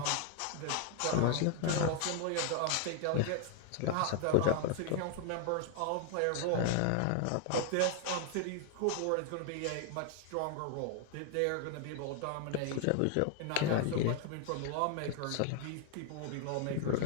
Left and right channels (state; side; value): different; both; correlation 0.00